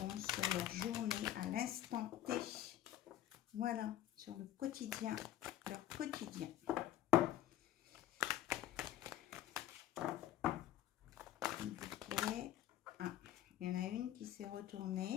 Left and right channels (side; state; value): right; quieter; 12.6 dB